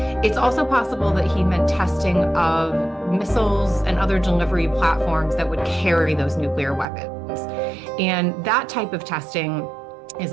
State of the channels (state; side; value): drops out; left; at 6.9 s